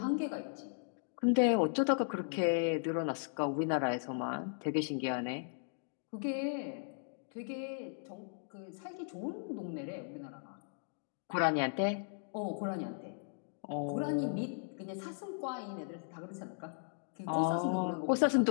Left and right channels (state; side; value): silent; right; digital silence